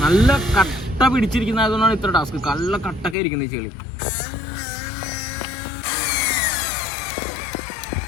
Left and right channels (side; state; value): right; drops out; at 3.2 s